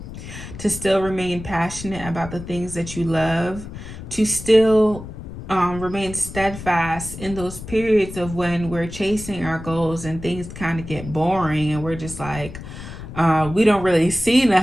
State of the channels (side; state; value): left; noise; rumble, 12 dB below the sound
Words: to still remain passionate about the things that you love, to still remain steadfast in those periods of when we're chasing our goals and things kind of get boring and we're just like, we don't really see